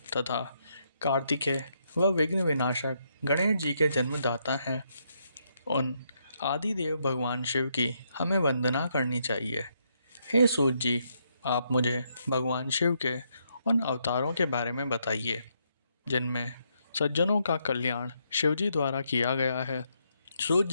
तथा कार्तिकेय व विघ्न विनाशक गणेश जी के जन्मदाता हैं, उन आदिदेव भगवान शिव की हमें वंदना करनी चाहिए। हे सूत जी, आप मुझे भगवान शिव के उन अवतारों के बारे में बताइए जिनमें सज्जनों का कल्याण शिव जी द्वारा किया गया है। सूत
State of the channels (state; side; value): inverted; both; correlation -0.77